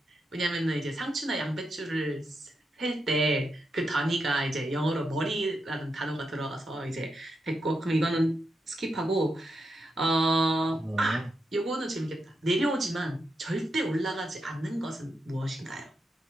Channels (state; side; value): normal; both; correlation 0.85